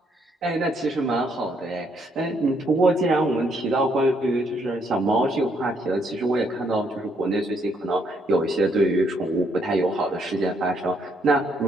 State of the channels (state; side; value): normal; both; correlation 0.72